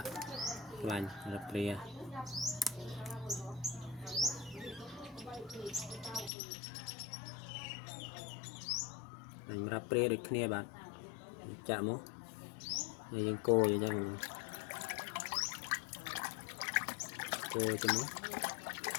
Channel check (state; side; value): drops out; right; at 6.3 s